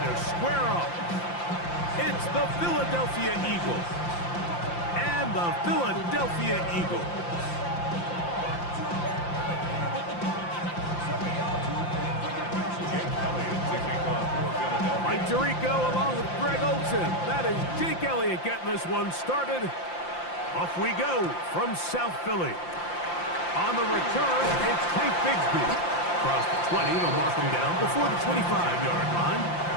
square up. It's the Philadelphia Eagles and the Philadelphia Eagles. Mike Tirico along with Greg Olson. That is Jake Elliott getting this one started. Off we go from South Philly. On the return, it's Tank Bigsby. Across the 20, they'll mark him down before the 25-yard line.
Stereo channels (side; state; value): right; late; 5.8 ms